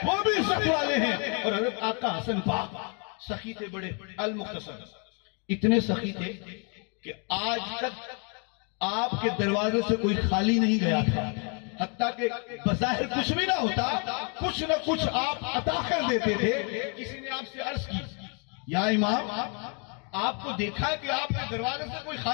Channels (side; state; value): right; quieter; 37.5 dB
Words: وہ بھی عزت والے ہیں۔ اور حضرت آقا حسن پاک سخی تھے بڑے، المختصر اتنے سخی تھے کہ آج تک آپ کے دروازے سے کوئی خالی نہیں گیا تھا، حتیٰ کہ بظاہر کچھ بھی نہ ہوتا، کچھ نہ کچھ آپ عطا کر دیتے تھے۔ کسی نے آپ سے عرض کی، یا امام آپ کو دیکھا کہ آپ کے دروازے سے کوئی